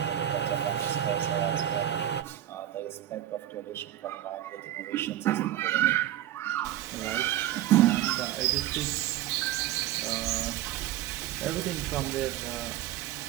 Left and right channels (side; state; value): left; quieter; 12.6 dB